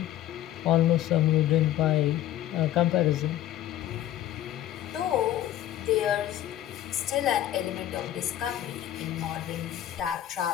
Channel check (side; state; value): right; quieter; 12.5 dB